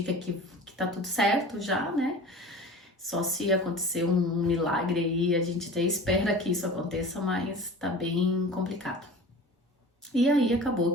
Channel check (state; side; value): normal; both; correlation 0.38